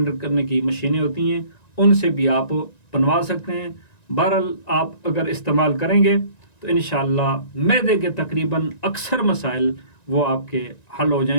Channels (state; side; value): late; right; 1.9 ms